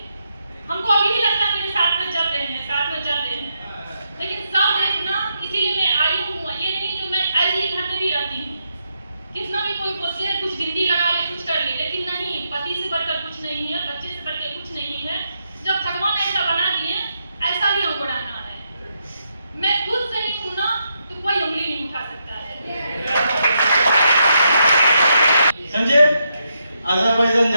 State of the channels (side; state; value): both; inverted; correlation -0.81